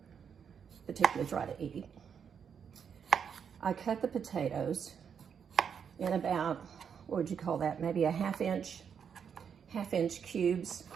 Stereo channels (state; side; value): quieter; left; 7.3 dB